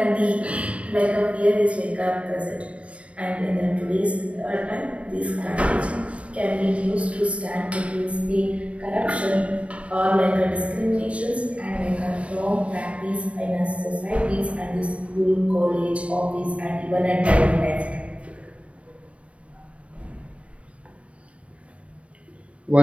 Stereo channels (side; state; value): left; late; 0.063 ms